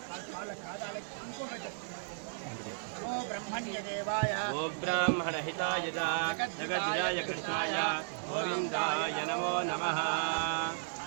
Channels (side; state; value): left; silent; digital silence